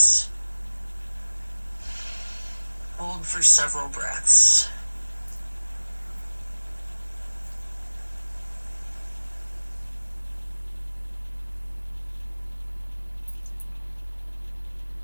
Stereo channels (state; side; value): inverted; both; correlation -1.00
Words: Hold for several breaths.